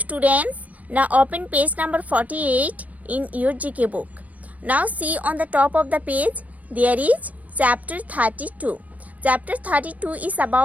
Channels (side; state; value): left; late; 0.071 ms